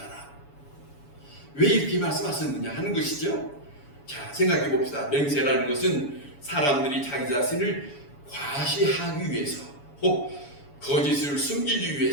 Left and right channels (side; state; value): right; late; 7.1 ms